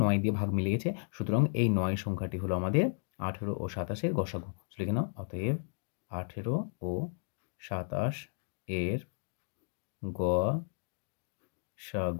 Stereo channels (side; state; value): right; silent; digital silence